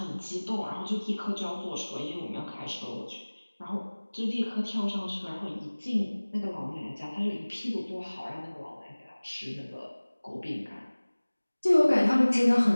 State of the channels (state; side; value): inverted; both; correlation -1.00